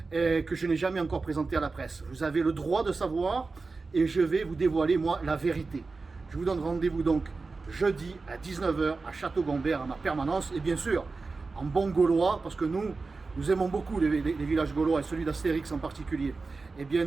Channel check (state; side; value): quieter; left; 4.0 dB